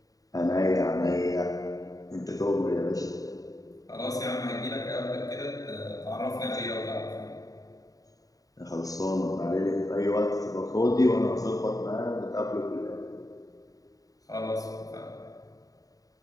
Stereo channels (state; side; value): late; right; 0.17 ms